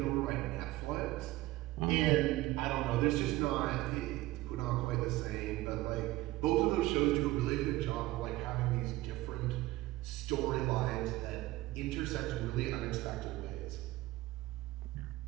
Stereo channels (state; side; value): quieter; left; 18.0 dB